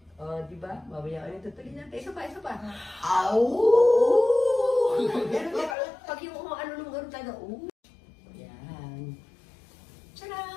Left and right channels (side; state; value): right; drops out; at 5.8 s